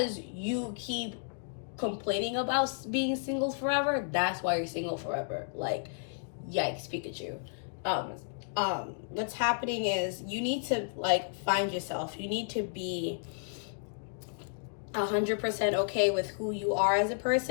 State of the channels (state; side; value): silent; right; digital silence